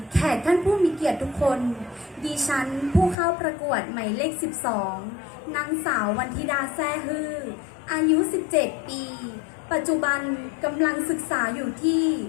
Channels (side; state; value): right; drops out; at 3.2 s